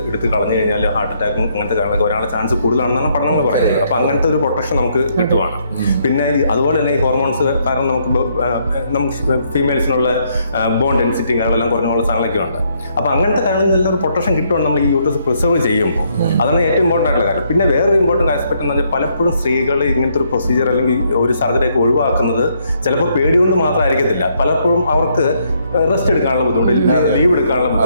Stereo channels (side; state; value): both; inverted; correlation -0.72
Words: എടുത്ത് കളഞ്ഞു കഴിഞ്ഞാൽ ഹാർട്ട് അറ്റാക്കും അങ്ങനത്തെ കാര്യങ്ങളൊക്കെ വരാനുള്ള ചാൻസ് കൂടുതലാണെന്നാണ് പഠനങ്ങൾ പറയുന്നത്. അപ്പോൾ അങ്ങനത്തെ ഒരു പ്രൊട്ടക്ഷൻ നമുക്ക് കിട്ടുവാണ്. പിന്നെ അതുപോലെ തന്നെ ഈ ഹോർമോൺസ് കാരണം നമുക്ക് ഫീമെയിൽസിനുള്ള ബോൺ ഡെൻസിറ്റി കാര്യങ്ങളെല്ലാം കുറഞ്ഞുള്ള സാധനങ്ങളൊക്കെ ഉണ്ട്. അപ്പോൾ അങ്ങനത്തെ കാര്യങ്ങളിൽ ഒരു പ്രൊട്ടക്ഷൻ കിട്ടുവാണ് നമ്മൾ ഈ യൂട്രസ് പ്രിസർവ് ചെയ്യുമ്പോൾ. അതാണ് ഏറ്റവും ഇമ്പോർട്ടൻ്റ് ആയിട്ടുള്ള കാര്യം. പിന്നെ വേറൊരു ഇമ്പോർട്ടൻ്റ് ആസ്പെക്ട് എന്ന് വെച്ചാൽ പലപ്പോഴും സ്ത്രീകൾ ഇങ്ങനത്തെ ഒരു പ്രൊസീജിയർ അല്ലെങ്കിൽ ഒരു സർജറിയൊക്കെ ഒഴിവാക്കുന്നത് ചിലപ്പോൾ പേടികൊണ്ട് മാത്രമായിരിക്കത്തില്ല. പലപ്പോഴും അവർക്ക് റെസ്റ്റ് എടുക്കാനുള്ള ബുദ്ധിമുട്ട്, ലീവ് എടുക്കാനുള്ള